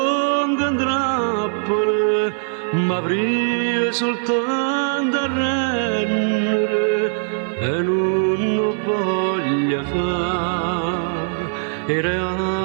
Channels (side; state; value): left; silent; digital silence